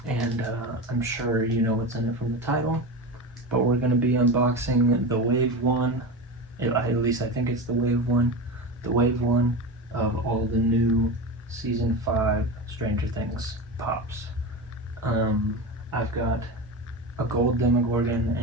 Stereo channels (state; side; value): normal; both; correlation 0.24